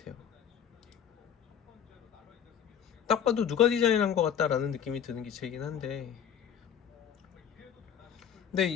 딱 봐도 누가 디자인한 것 같다라는 느낌이 드는 기체이긴 한데, 근데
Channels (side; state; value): right; quieter; 8.6 dB